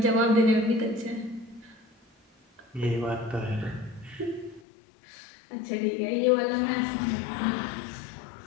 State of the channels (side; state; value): right; drops out; at 4.6 s